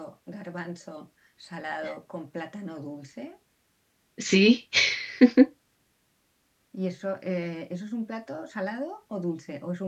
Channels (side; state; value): both; identical; correlation 1.00